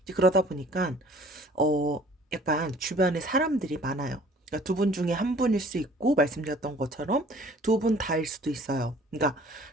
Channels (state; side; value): normal; both; correlation 0.52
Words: 이제 그러다 보니까, 어 약간 주변에 사람들이 많아요. 그러니까 두 분 중에 한 분일 수 있고 말씀드렸던 것처럼 두 분 다일 수도 있어요. 그러니까